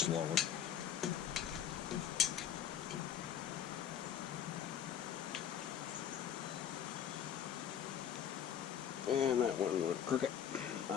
And that one went crooked.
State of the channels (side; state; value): right; quieter; 9.1 dB